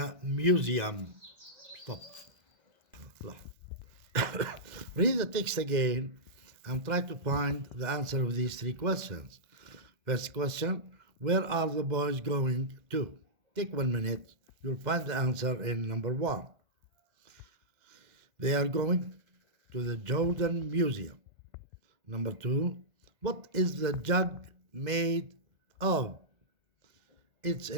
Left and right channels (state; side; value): late; left; 2.0 ms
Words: museum? Stop. Read the text again and try to find the answer of these 3 questions. First question, where are the boys going to? Take 1 minute. You'll find the answer in number 1. They are going to the Jordan Museum. Number 2, what is the jug made of? It's